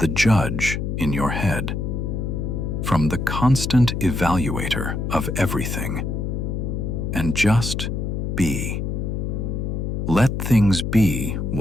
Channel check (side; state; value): left; noise; hum, 2 dB below the sound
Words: judge in your head, from the constant evaluator of everything, and just be. Let things be